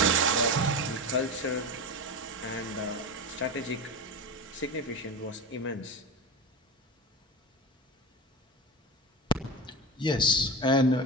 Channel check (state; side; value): normal; both; correlation 0.24